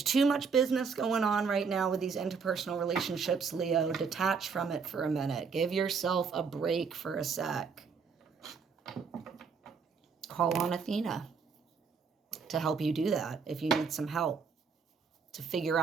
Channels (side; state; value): left; quieter; 5.6 dB